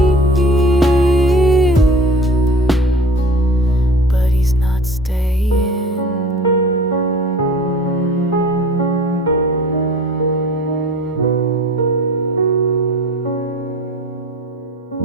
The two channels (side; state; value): both; normal; correlation 0.42